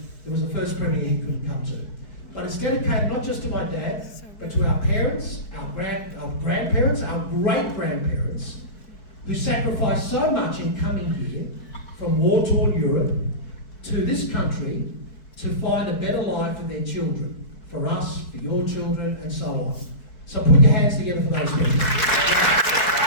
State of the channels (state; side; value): late; right; 4.6 ms